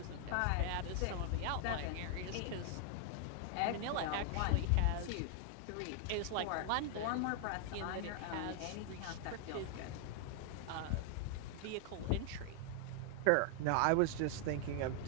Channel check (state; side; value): different; both; correlation 0.00